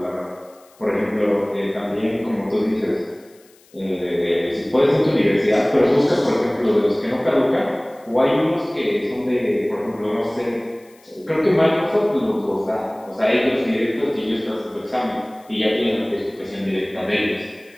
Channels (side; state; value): left; noise; hiss, 30 dB below the sound